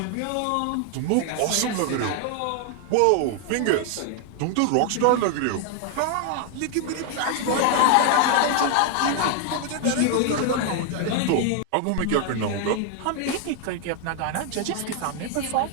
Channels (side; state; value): both; different; correlation 0.00